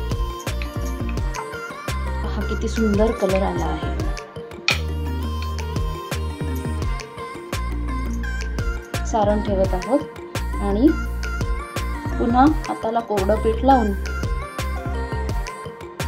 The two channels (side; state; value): both; identical; correlation 1.00